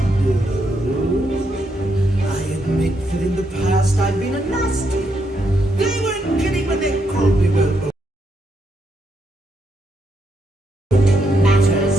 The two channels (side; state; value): both; normal; correlation 0.78